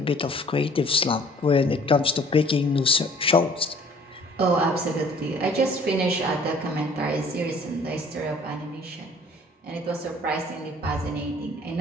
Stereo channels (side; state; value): both; normal; correlation 0.54